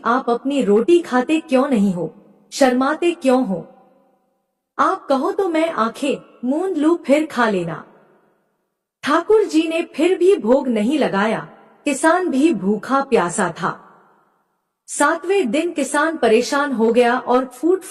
आप अपनी रोटी खाते क्यों नहीं हो, शर्माते क्यों हो? आप कहो तो मैं आंखें मूंद लूं फिर खा लेना। ठाकुर जी ने फिर भी भोग नहीं लगाया। किसान भी भूखा प्यासा था। 7वें दिन किसान परेशान हो गया और फूट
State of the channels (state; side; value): identical; both; correlation 1.00